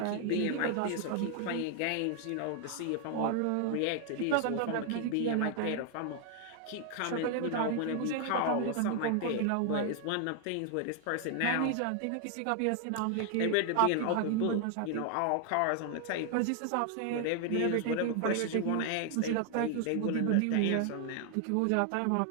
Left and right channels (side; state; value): both; different; correlation 0.00